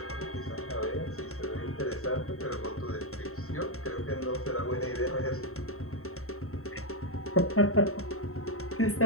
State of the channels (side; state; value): right; late; 0.63 ms